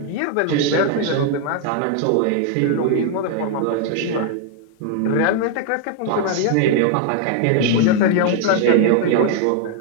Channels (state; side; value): different; both; correlation 0.00